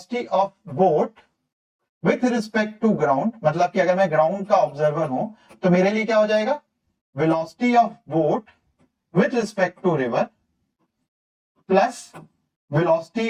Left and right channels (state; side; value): identical; both; correlation 1.00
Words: of boat with respect to ground, मतलब कि अगर मैं ग्राउंड का ऑब्जर्वर हूं तो मेरे लिए क्या हो जाएगा, velocity of boat with respect to river plus velocity